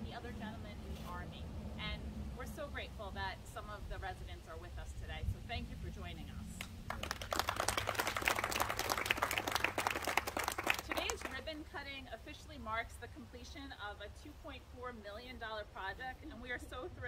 the other gentleman in the Army. And we're so grateful that some of the residents are with us today, so thank you for joining us. Today's ribbon cutting officially marks the completion of a $2.4 million project, and we are so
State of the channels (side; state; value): both; identical; correlation 1.00